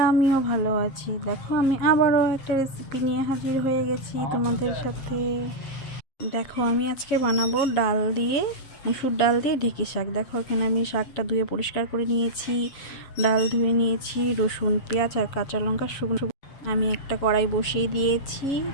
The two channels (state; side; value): late; right; 7.4 ms